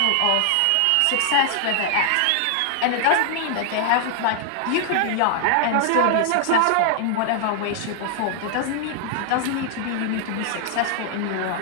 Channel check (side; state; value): both; different; correlation 0.00